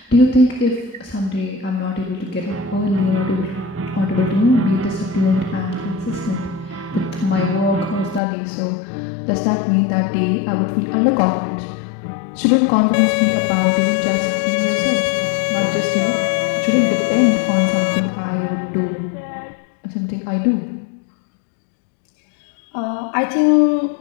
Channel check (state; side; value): drops out; right; at 8.2 s